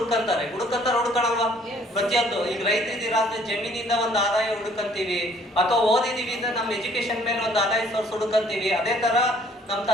ಪ್ರತಿಯೊಂದು ಈಗ ರೈತರಿದ್ದೀರಾ ಅಂದ್ರೆ ಜಮೀನಿಂದ ಒಂದು ಆದಾಯ ಹುಡುಕಂತೀವಿ, ಅಥವಾ ಓದಿದೀವಿ ಅಂದ್ರೆ ನಮ್ಮ ಎಜುಕೇಶನ್ ಮೇಲೆ ಒಂದು ಆದಾಯ ಸೋರ್ಸ್ ಹುಡುಕಂತೀವಿ. ಅದೇ ತರ ನಮ್ಮ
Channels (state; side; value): normal; both; correlation 0.59